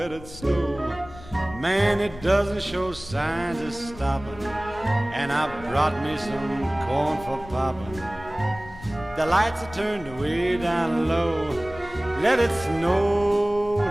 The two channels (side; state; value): left; noise; rumble, 17 dB below the sound